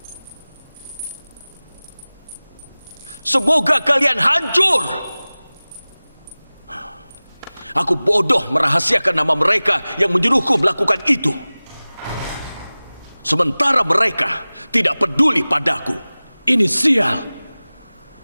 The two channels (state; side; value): inverted; both; correlation -0.99